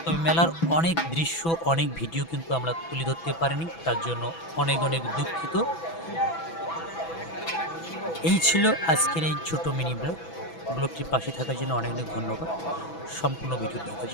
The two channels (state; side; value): late; right; 6.0 ms